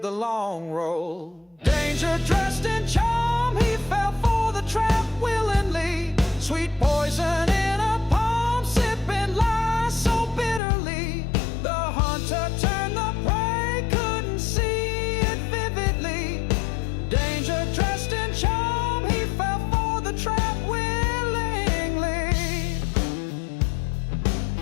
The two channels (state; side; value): drops out; right; at 10.6 s